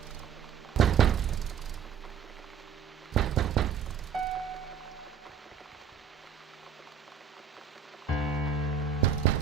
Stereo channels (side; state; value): left; quieter; 7.3 dB